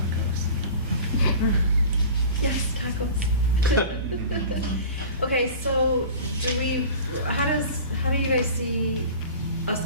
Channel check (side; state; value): both; inverted; correlation -0.38